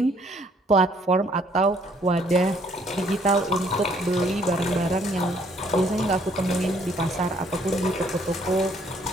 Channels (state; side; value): normal; both; correlation 0.64